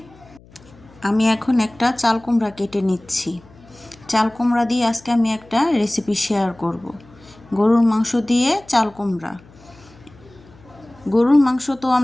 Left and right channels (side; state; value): left; noise; hum, 25 dB below the sound